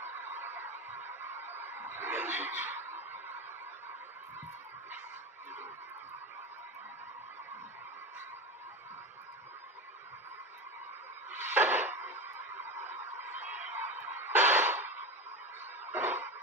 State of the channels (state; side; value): normal; both; correlation 0.22